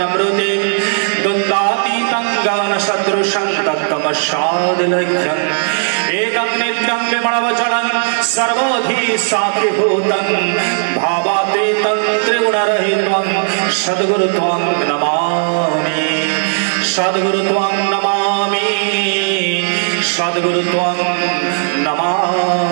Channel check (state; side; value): silent; left; digital silence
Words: द्वन्द्वातीतं ज्ञानसदृशं तत्त्वमस्यादिलक्ष्यम्। एकं नित्यं विमलवचनं सर्वधी साक्षिभूतं भावातीतं त्रिगुणरहितं सद्गुरुत्वं नमामि। सद्गुरुत्वं नमामि। सद्गुरुत्वं